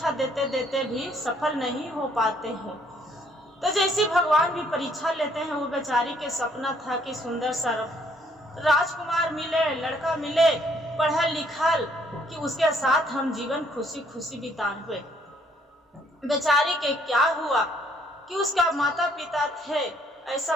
देते देते भी सफल नहीं हो पाते हैं। तो जैसे भगवान भी परीक्षा लेते हैं, वो बेचारी के सपना था कि सुंदर सा राजकुमार मिले, लड़का मिले, पढ़ा लिखल, कि उसके साथ हम जीवन खुशी खुशी बिताए। बेचारी के क्या हुआ कि उसका माता पिता थे, ऐसा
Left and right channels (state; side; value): normal; both; correlation 0.66